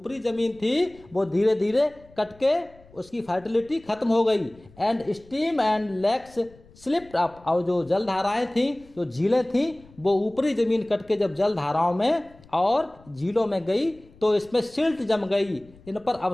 ज़मीन थी वो धीरे धीरे कट के उसकी फर्टिलिटी खत्म हो गई। And stream and lakes slipped up, और जो जलधाराएं थीं, जो झीलें थीं, वो ऊपरी ज़मीन कट के जब जलधाराओं में और झीलों में गई तो इसमें सिल्ट जम गई, इन पर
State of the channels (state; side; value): noise; left; rumble, 25 dB below the sound